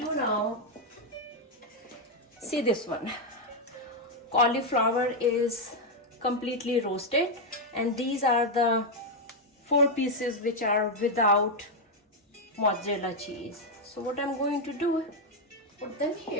now, see this one. Cauliflower is completely roasted, and these are the 4 pieces which are without mozzarella cheese. So what I'm going to do, put them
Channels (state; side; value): normal; both; correlation 0.02